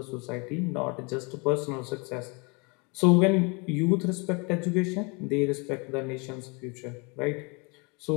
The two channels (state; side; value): quieter; right; 30.7 dB